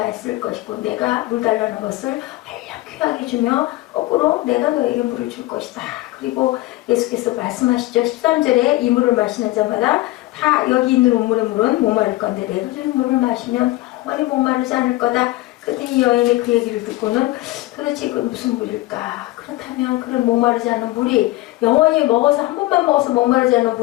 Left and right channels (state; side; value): quieter; right; 18.8 dB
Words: 했을 것이고 내가 물 달라는 것을 얼른 귀하게 주며 거꾸로 내가 너에게 물을 줄 것이다. 그리고 예수께서 말씀하시죠. 13절에 이 물을 마시는 자마다 다 여기 있는 우물의 물은 목마를 건데 내가 주는 물을 마시면 영원히 목마르지 않을 거다. 그때 이 여인이 그 얘기를 듣고는 도대체 이건 무슨 물일까? 그렇다면 그런 목마르지 않은 물이 영원히 먹어서 한 번만 먹어서 목마르지 않은